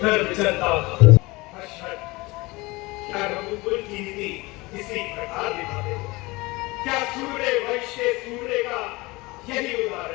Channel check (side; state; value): right; quieter; 22.8 dB